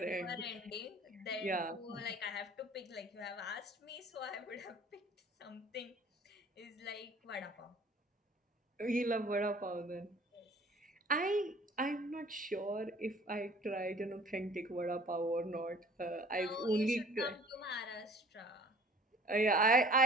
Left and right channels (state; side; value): normal; both; correlation 0.49